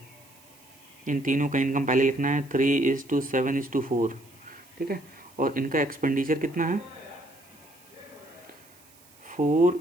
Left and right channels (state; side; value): noise; right; hiss, 26 dB below the sound